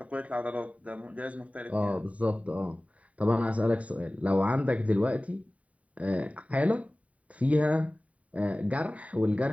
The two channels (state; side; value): late; left; 0.067 ms